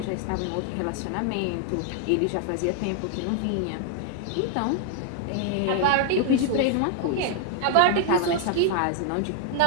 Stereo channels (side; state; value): both; different; correlation 0.00